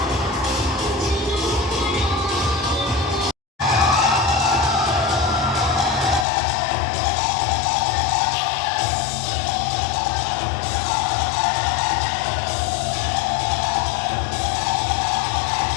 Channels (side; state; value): right; drops out; at 6.2 s